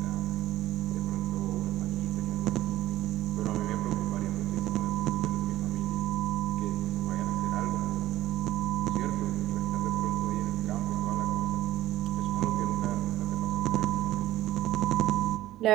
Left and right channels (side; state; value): left; quieter; 14.9 dB